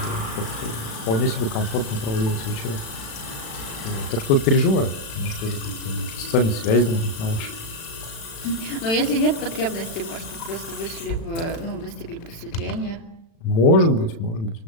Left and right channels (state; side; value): late; right; 36 ms